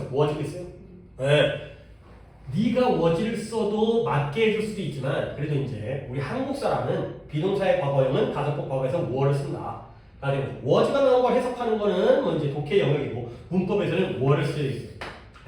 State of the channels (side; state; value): both; identical; correlation 1.00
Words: was를 했어요? 네. 네가 was를 써도 맞게 해줄 수도 있지만 그래도 이제 우리 한국 사람은 비동사의 과거형은 가정법 과거에서 were를 쓴다. was가 나온 걸 해석하는 거는 뭐 이제 독해 영역이고 문법에서는 were를 쓰여 있어요.